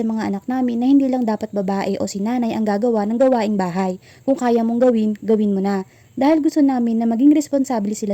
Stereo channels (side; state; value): both; identical; correlation 1.00